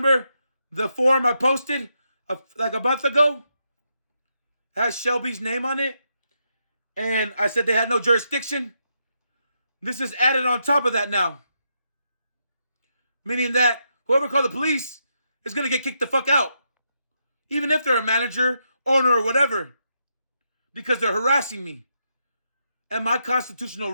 the form I posted like a month ago? It has Shelby's name on it. And I said they had no jurisdiction. This is added on top of that now. Meaning that whoever called the police is going to get kicked the fuck out. Even if they're a manager, owner, or whatever. Because they're harassing me. And my constitutional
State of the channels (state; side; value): inverted; both; correlation -0.81